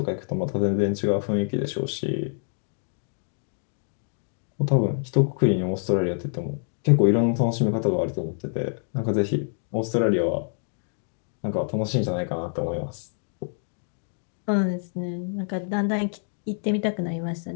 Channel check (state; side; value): silent; right; digital silence